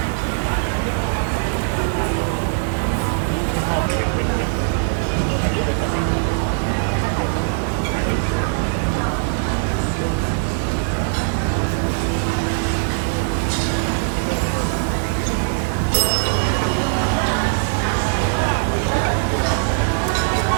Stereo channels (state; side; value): silent; left; digital silence